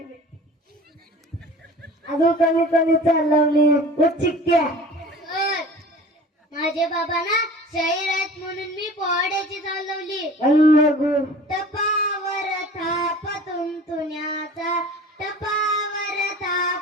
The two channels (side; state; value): both; normal; correlation 0.42